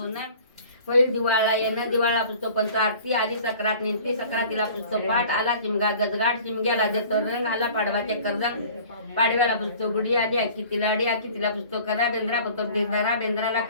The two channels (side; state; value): both; inverted; correlation -0.47